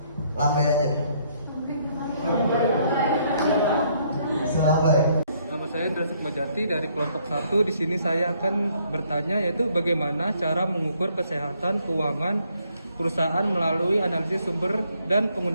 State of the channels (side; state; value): both; inverted; correlation -0.69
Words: lambai aja. Selambai. Nama saya Indra Sukmajati dari kelompok 1. Di sini saya akan bertanya yaitu bagaimana cara mengukur kesehatan keuangan perusahaan melalui analisis sumber dan